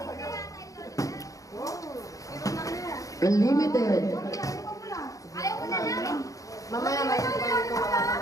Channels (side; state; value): right; late; 0.16 ms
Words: Unlimited. Ayaw ko na lang.